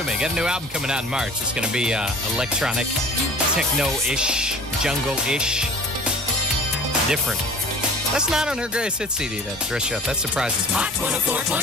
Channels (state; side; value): normal; both; correlation 0.44